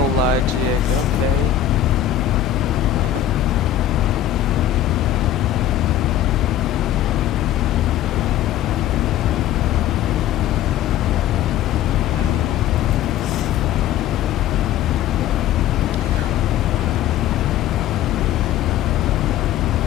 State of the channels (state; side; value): quieter; right; 11.3 dB